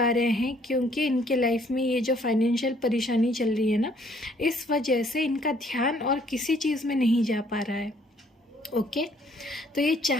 रहे हैं क्योंकि इनके लाइफ में ये जो फाइनेंशियल परेशानी चल रही है ना, इस वजह से इनका ध्यान और किसी चीज़ में नहीं जा पा रहा है। ओके, तो ये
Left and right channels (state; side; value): normal; both; correlation 0.63